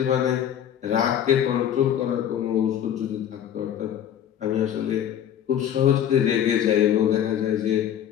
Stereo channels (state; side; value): quieter; right; 9.9 dB